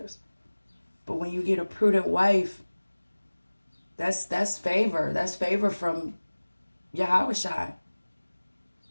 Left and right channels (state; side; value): inverted; both; correlation -1.00